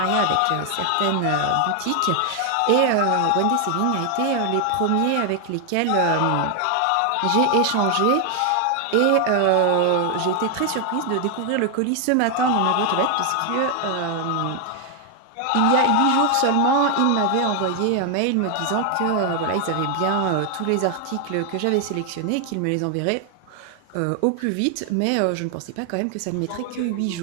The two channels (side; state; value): both; different; correlation 0.00